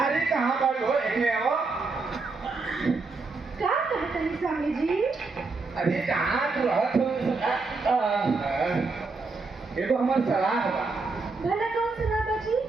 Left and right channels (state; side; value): quieter; left; 4.0 dB